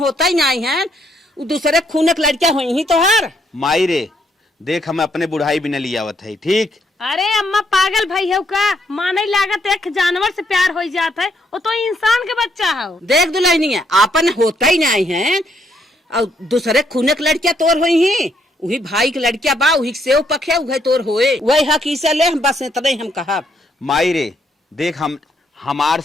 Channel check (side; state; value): both; normal; correlation 0.73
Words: ही नहीं है, दूसरे खून की लड़कियां हुई ही तो हर माई रे देख हम अपने बुढ़ाई भी न लिया आवत है। ठीक अरे अम्मा पागल भाई है का माने लागत एक जानवर से प्यार हो जाता है, वो तो इंसान के बच्चा है। देख दुल्हनिया अपन होता ही नहीं है और दूसरे खून की लड़कियां तोर हुई ही, वही भाई की लड़कियां बा वही सेव पखे उहे तोर होए, वही हक इसे ले बस इतना ही हम कहा। माई रे देख हम हमार